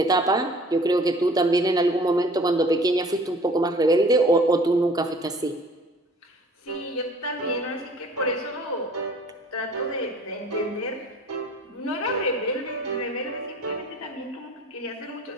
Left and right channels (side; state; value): both; normal; correlation 0.50